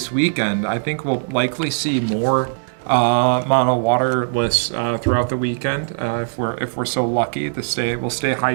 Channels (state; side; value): silent; left; digital silence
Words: weekend. I think we'll likely see more mono water lists throughout the weekend if we're so lucky to we'll stay